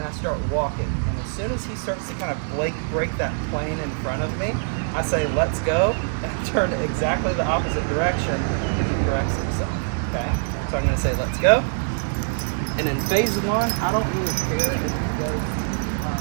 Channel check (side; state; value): left; silent; 63 dB below the other